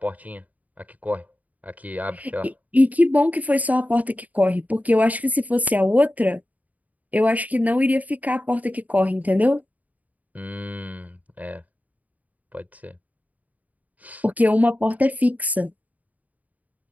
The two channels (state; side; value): late; left; 0.074 ms